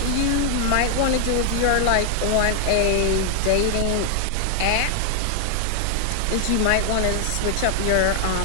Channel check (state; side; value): different; both; correlation 0.00